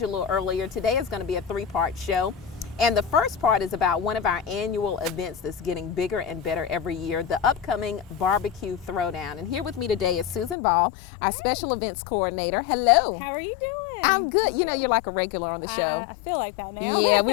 you a little earlier, today is going to be a three-part show. And the first part is about one of our annual events that's getting bigger and better every year, the upcoming Barbecue Throwdown. And here with me today is Susan Ball, our special events coordinator. Hello. How are you doing? I'm good. You know, you're like a regular on the show. I feel like that now. Yeah,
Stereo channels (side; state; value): right; drops out; at 10.6 s